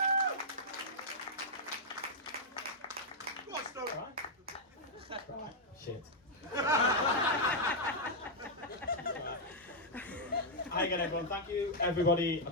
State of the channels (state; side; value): normal; both; correlation -0.04